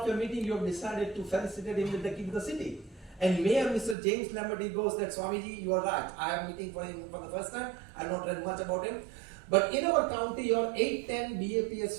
your meeting, you have decided to felicitate him with the key to the city. And Mayor Mr. James Lambert, he goes that, Swamiji, you are right. I am meeting for him for the first time. I have not read much about him. But in our county, your 8-10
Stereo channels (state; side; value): drops out; left; at 4.0 s